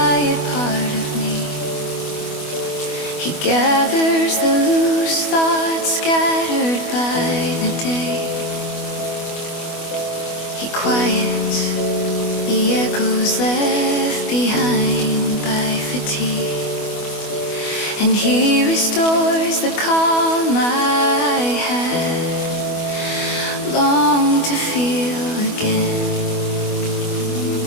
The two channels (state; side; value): late; right; 24 ms